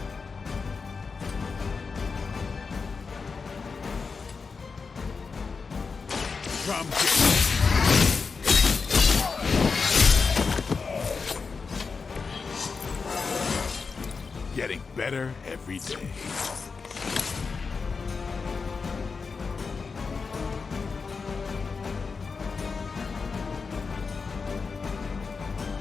Drum kick. Getting better every day.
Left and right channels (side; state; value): right; quieter; 4.9 dB